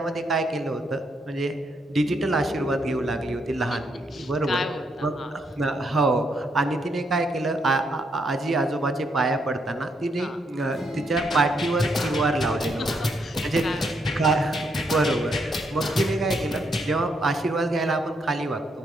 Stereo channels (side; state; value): both; normal; correlation 0.76